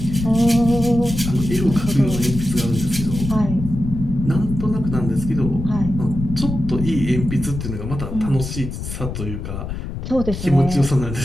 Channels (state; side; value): noise; left; rumble, 6 dB below the sound